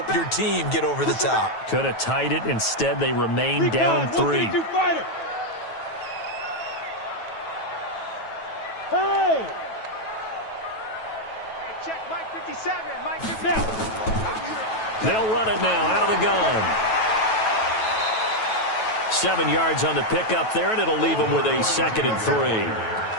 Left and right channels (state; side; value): late; right; 9.2 ms